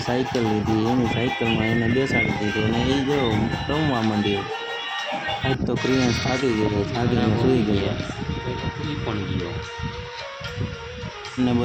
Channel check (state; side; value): identical; both; correlation 1.00